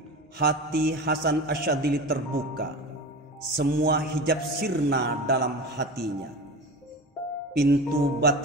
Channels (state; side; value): normal; both; correlation 0.30